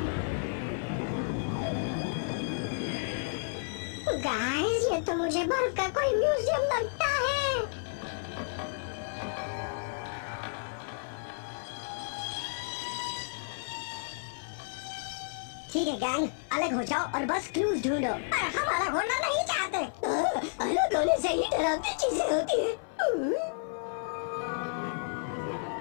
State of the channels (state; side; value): silent; right; 57 dB below the other